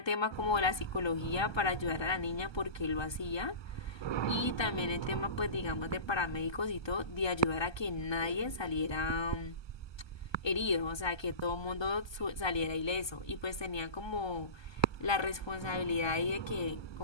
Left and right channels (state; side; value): late; right; 1.2 ms